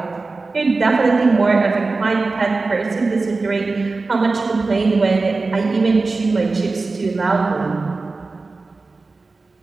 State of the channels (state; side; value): quieter; left; 3.7 dB